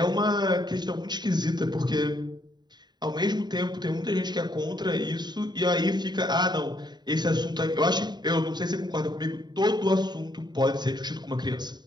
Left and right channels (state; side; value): late; left; 0.21 ms